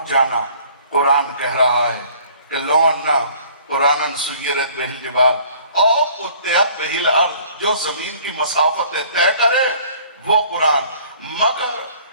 جانا۔ قرآن کہہ رہا ہے کہ لو انا قرآن سیرت بہ الجبال اور قطعت بہ الارض، جو زمین کی مسافتیں طے کرے وہ قرآن۔ مگر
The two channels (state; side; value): inverted; both; correlation -0.54